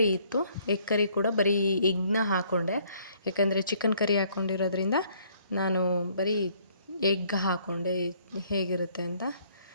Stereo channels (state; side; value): inverted; both; correlation -0.63